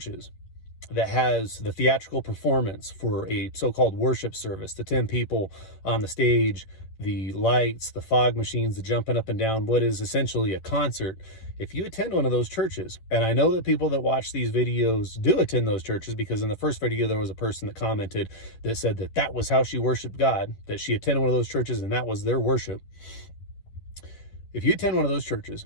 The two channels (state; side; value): late; right; 11 ms